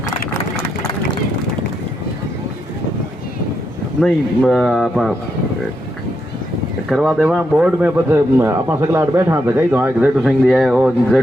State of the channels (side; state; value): both; normal; correlation 0.81